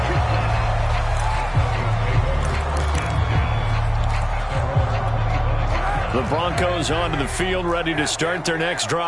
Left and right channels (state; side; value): identical; both; correlation 1.00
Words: The Broncos onto the field, ready to start their next